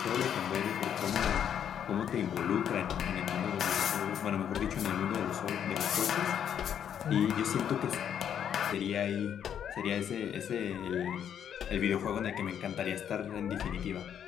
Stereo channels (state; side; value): quieter; right; 9.0 dB